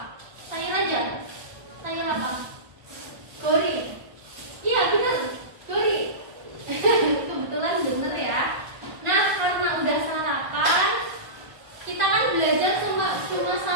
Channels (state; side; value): late; left; 1.5 ms